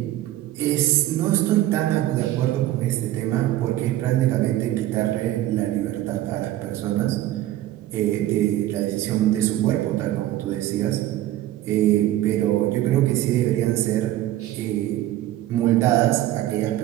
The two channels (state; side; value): quieter; left; 14.2 dB